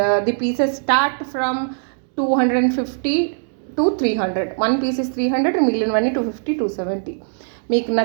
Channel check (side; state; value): left; silent; digital silence